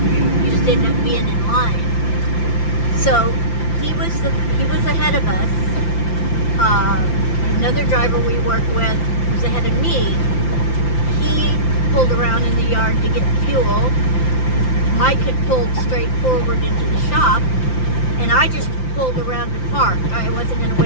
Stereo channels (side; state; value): right; late; 5.9 ms